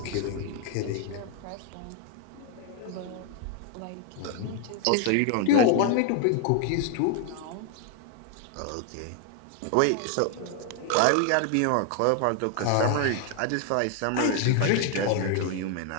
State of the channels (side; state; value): both; different; correlation 0.00